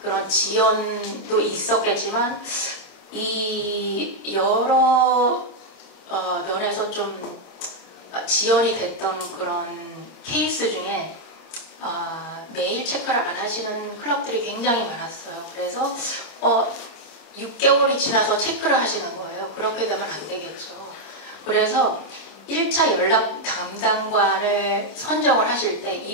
지연도 있었겠지만, 이 여러 면에서 좀 지연이 됐던 그런 케이스 중에 메일 체크를 안 하시는 클럽들이 굉장히 많았어요. 그래서 6개월이 지나서 체크를 하시는 거예요. 그렇게 되면 안 되겠죠. 그래서 1차 연락 담당관을 선정을 하실 때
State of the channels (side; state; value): right; late; 26 ms